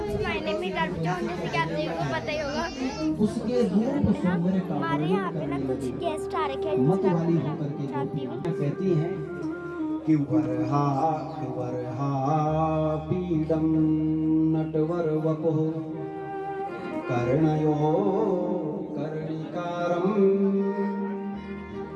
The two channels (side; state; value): both; identical; correlation 1.00